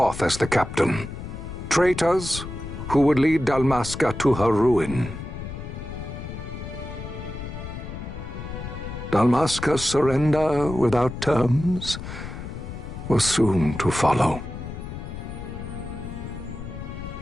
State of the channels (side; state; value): left; noise; rumble, 9 dB below the sound